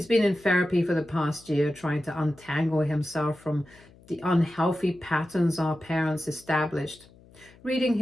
been in therapy for the past year, trying to untangle himself from the unhealthy patterns our parents established. Reading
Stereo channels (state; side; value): noise; left; hum, 25 dB below the sound